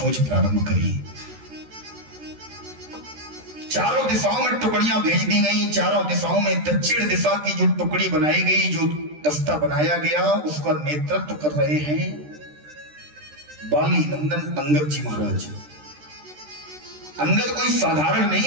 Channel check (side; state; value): left; late; 13 ms